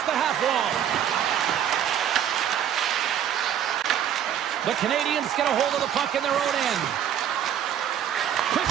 the half wall. The Canadiens get a hold of the puck in their own end. Quick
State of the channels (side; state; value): left; quieter; 9.8 dB